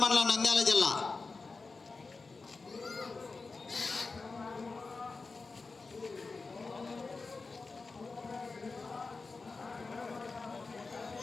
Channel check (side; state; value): right; quieter; 4.1 dB